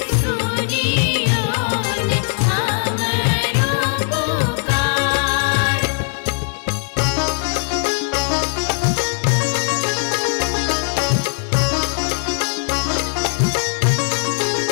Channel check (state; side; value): silent; right; digital silence